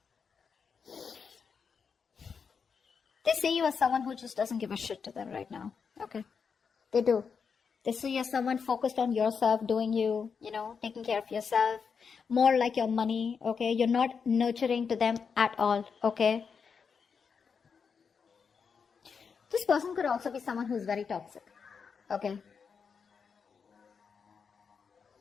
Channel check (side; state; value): right; quieter; 6.0 dB